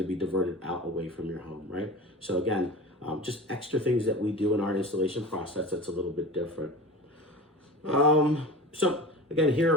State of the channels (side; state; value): both; normal; correlation 0.32